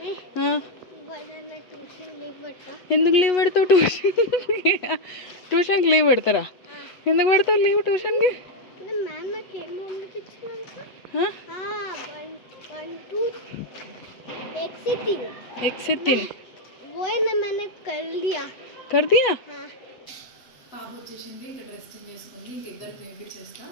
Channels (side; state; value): right; late; 8.2 ms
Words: ఎందుకు లీవ్ పెడతావు? ట్యూషన్కి లీవ్ పెడతారా? ఎందుకు పెడతావు లీవ్ ట్యూషన్కి? कर दिया. పాప వచ్చేసింది, ఇంకా డ్రెస్ చేంజ్ చేసుకుంది. ఇంక ఇద్దరికి తినిపించేస్తా.